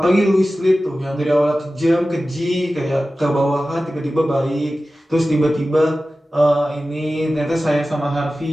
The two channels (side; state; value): both; normal; correlation 0.95